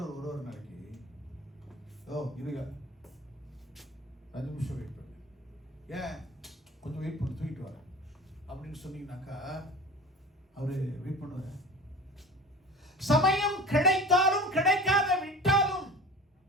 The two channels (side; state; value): both; normal; correlation 0.38